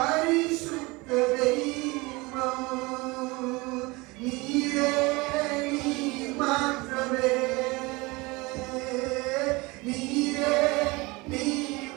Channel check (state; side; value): quieter; left; 24.2 dB